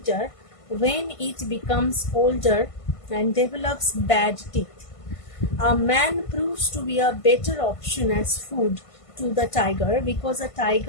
when it becomes older and develops bad teeth. A man proves to be a better option as food to the tiger because a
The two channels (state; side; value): late; right; 1.5 ms